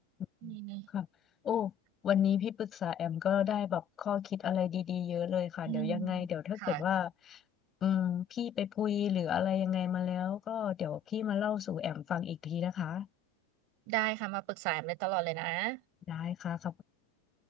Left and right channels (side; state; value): right; quieter; 5.2 dB